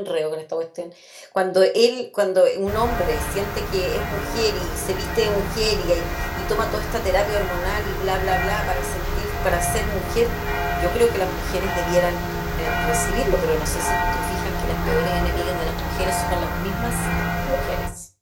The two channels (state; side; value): identical; both; correlation 1.00